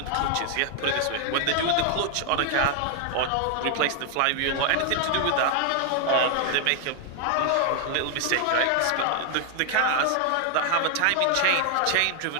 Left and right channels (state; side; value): different; both; correlation 0.00